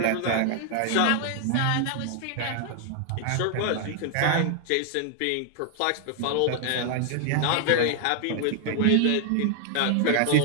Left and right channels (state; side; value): different; both; correlation 0.00